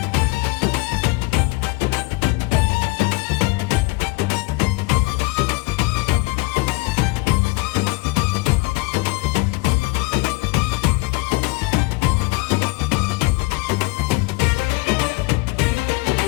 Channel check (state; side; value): quieter; right; 23.6 dB